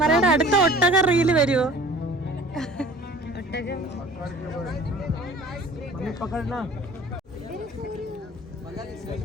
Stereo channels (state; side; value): normal; both; correlation 0.47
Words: അടുത്ത ഒട്ടക റീല് വരുവോ?